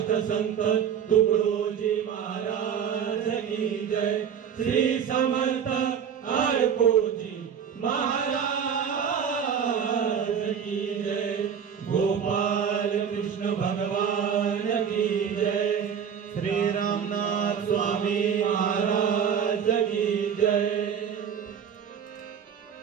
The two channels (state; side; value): quieter; left; 7.8 dB